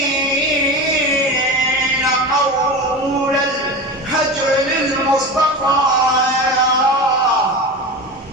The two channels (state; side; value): normal; both; correlation 0.27